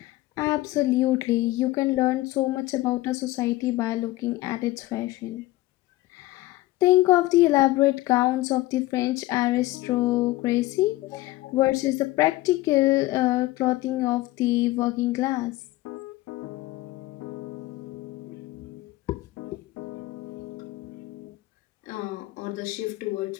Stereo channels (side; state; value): right; quieter; 18.1 dB